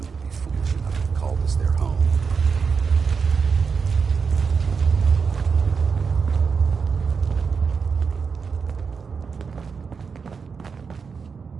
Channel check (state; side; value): quieter; left; 5.6 dB